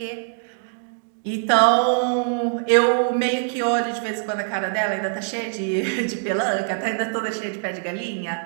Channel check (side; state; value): left; silent; digital silence